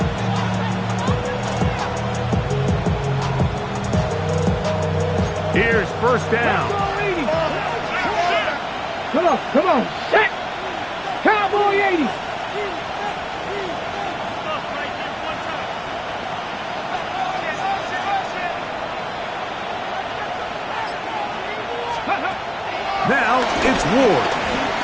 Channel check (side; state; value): both; identical; correlation 1.00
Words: Here's 1st down. Come on, set. Cowboy 80. Now it's Ward.